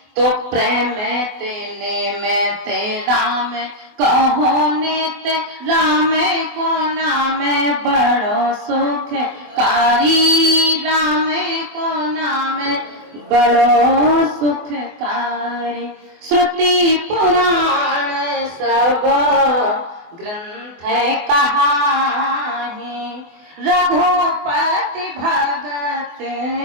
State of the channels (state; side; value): late; left; 24 ms